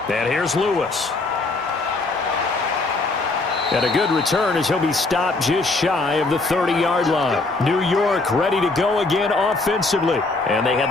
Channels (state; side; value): quieter; right; 3.4 dB